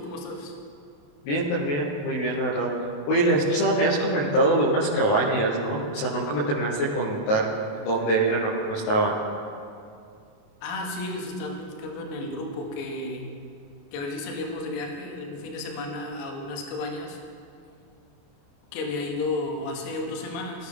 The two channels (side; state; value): right; late; 28 ms